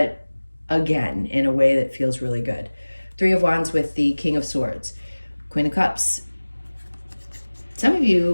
again, in a way that feels really good. 3 of Wands with the King of Swords. Queen of Cups. Some of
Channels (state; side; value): inverted; both; correlation -1.00